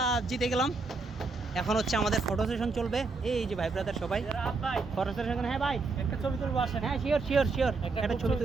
জিতে গেলাম। এখন হচ্ছে আমাদের ফটো সেশন চলবে। এই যে ভাই ব্রাদার সবাই ফটো সেশন। হ্যাঁ ভাই, একটা ছবি তুলবো, আসেন। হ্যাঁ শিওর একটা ছবি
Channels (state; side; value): quieter; left; 3.9 dB